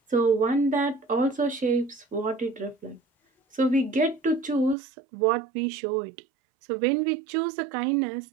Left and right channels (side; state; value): left; drops out; at 4.8 s